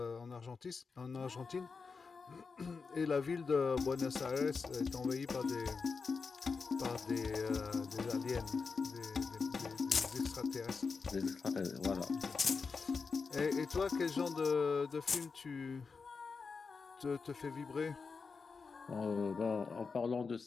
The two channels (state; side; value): quieter; right; 4.9 dB